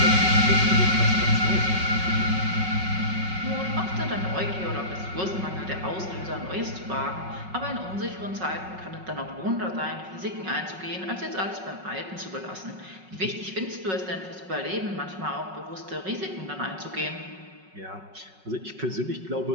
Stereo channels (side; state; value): left; late; 5.4 ms